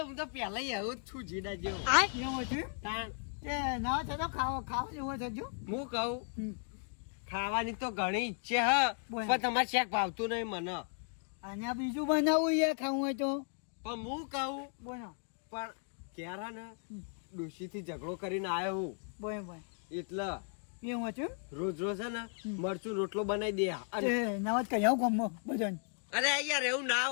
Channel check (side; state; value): right; silent; 54 dB below the other